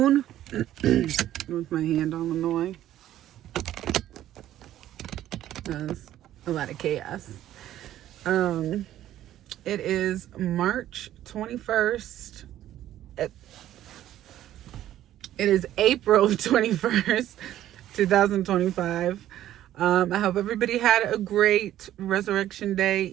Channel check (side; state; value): left; quieter; 12.7 dB